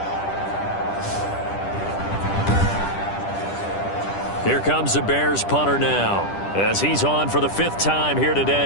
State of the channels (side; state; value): right; late; 10 ms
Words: Here comes the Bears punter now, as he's on for the 5th time here